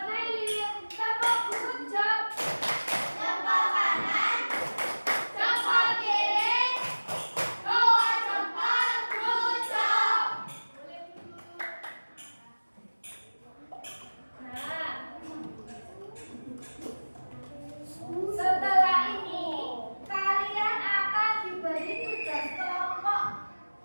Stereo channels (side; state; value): both; inverted; correlation -1.00